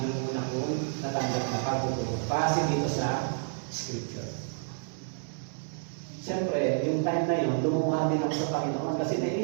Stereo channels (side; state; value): left; silent; 58 dB below the other